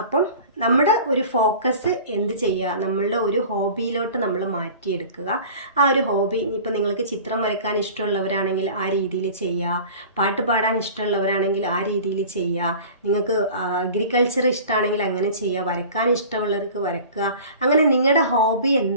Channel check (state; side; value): inverted; both; correlation -0.41